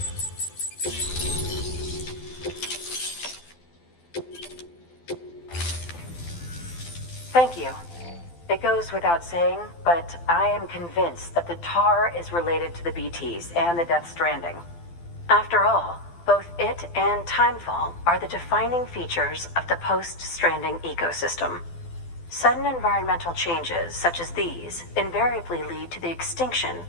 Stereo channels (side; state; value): right; late; 12 ms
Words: Thank you. It goes without saying, but I am convinced that the tar is related to the BTs and the Death Stranding. After all, both it and Timefall are the defining features of the post-Stranding ecosystem. Sudden environmental changes such as these invariably lead to the extinction